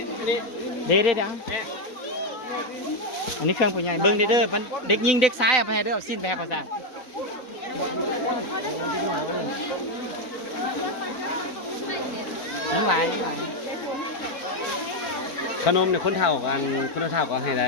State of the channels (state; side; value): late; right; 3.9 ms